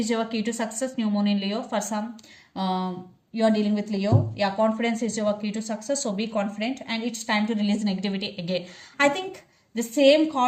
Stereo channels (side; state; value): both; identical; correlation 1.00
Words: your key to success. New moon in Leo. For some, you are dealing with Leo. Yeah, confidence is your key to success. So be confident, and it's time to release negativity again. I think the same